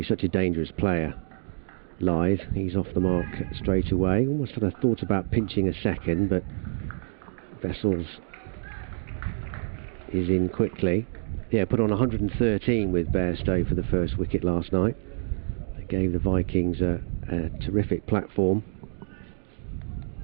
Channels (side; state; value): left; silent; digital silence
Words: such a dangerous player, Lyth. He's off the mark straight away. Almost had a thought about pinching a second, but Vessels is in quickly. Yeah, put on 113 with Bairstow for the first wicket last night. They gave the Vikings a terrific platform.